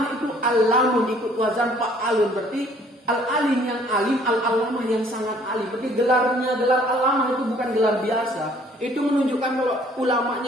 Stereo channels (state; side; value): normal; both; correlation 0.59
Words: itu alamun ikut wazan fa'alun, berarti al-alim yang alim, al-allamah yang sangat alim. Berarti gelarnya gelar allamah itu bukan gelar biasa. Itu menunjukkan kalau